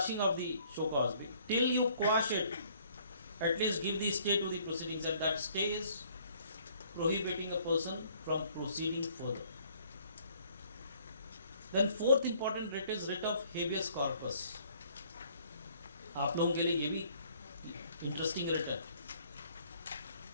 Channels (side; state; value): both; inverted; correlation -0.60